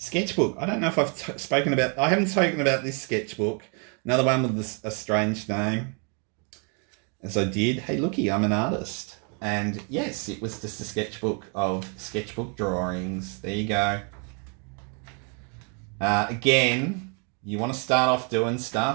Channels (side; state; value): left; quieter; 37.7 dB